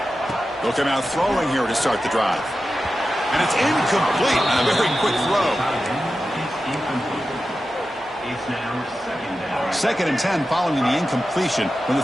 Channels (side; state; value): both; normal; correlation 0.92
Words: They'll come out throwing here to start the drive. And it's incomplete. A very quick throw. Second and 10 following the incompletion from the